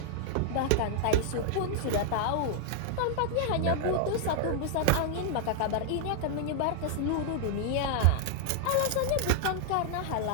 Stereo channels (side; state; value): both; different; correlation 0.00